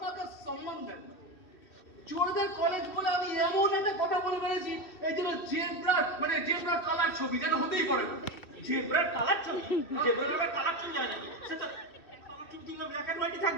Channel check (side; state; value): right; late; 2.6 ms